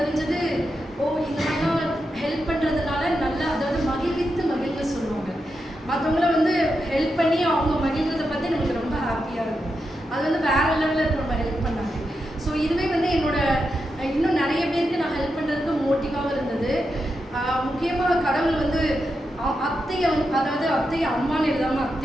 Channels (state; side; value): normal; both; correlation 0.87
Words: இந்த மாதிரிலாம் ஹெல்ப் பண்ணுறதுனால நல்லா, அதாவது மகிழ்ந்து சொல்லுவாங்க. மற்றவங்கள ஹெல்ப் பண்ணி அவங்க மகிழ்றதை பற்றி நமக்கு ரொம்ப ஹாப்பியாக இருக்கும். அது வேறு லெவலில் இருக்கும் நம்ம ஹெல்ப் பண்ணாங்க. ஸோ இதுவே என்னோட இன்னும் நிறைய பேருக்கு நான் ஹெல்ப் பண்ணுறதுக்கு மோட்டிவாகவும் இருந்தது. முக்கியமாக கடவுள் அத்தையை அதாவது அத்தையை அம்மான்னு எழுதாமல்